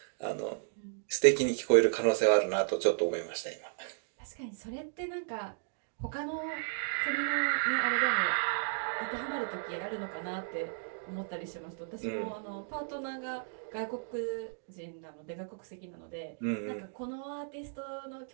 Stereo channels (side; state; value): left; silent; digital silence